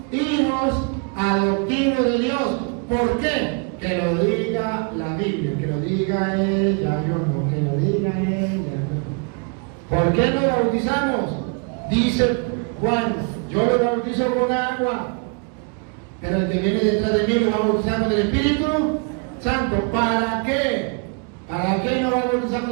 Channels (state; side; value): quieter; left; 35.2 dB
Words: hijos adoptivos de Dios. ¿Por qué? Que lo diga la Biblia, que lo diga ella, Dios no, que lo diga ella. ¿Por qué nos bautizamos? Dice Juan, yo lo bautizo con agua, pero el que viene detrás de mí lo va a bautizar con el Espíritu Santo. ¿Para qué? ¿Para qué lo va a bautizar